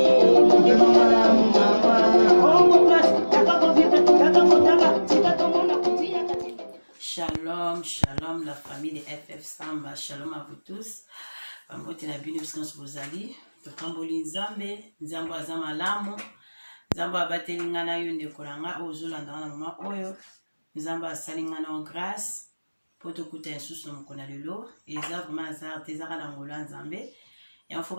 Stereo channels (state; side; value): inverted; both; correlation -1.00